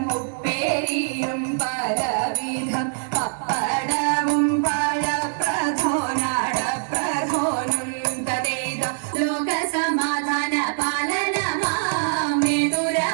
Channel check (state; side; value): silent; left; digital silence